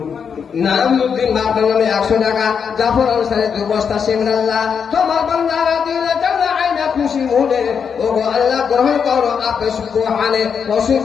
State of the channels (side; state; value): right; quieter; 6.7 dB